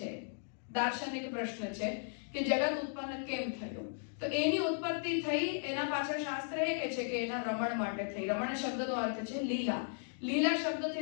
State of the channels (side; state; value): right; silent; digital silence